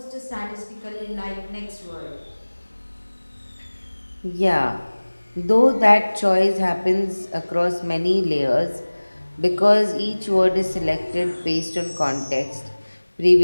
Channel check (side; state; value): both; inverted; correlation -1.00